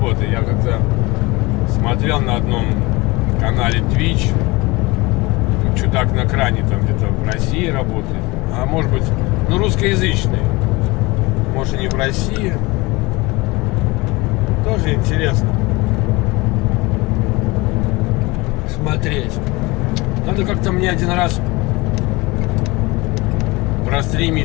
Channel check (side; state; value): right; quieter; 23.3 dB